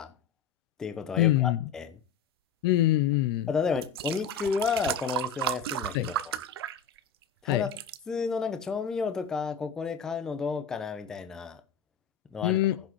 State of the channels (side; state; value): right; quieter; 6.5 dB